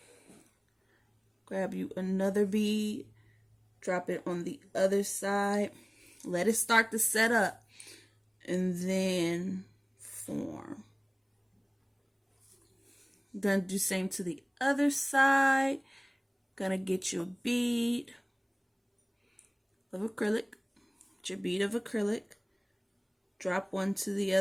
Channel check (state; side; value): identical; both; correlation 1.00